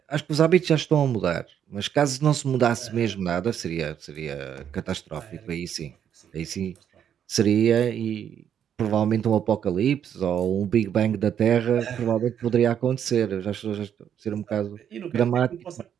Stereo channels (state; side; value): quieter; left; 9.0 dB